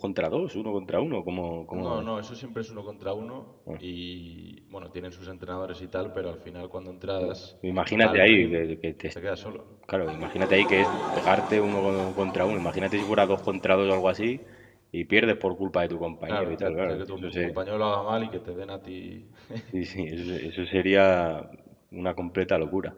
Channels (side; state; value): both; identical; correlation 1.00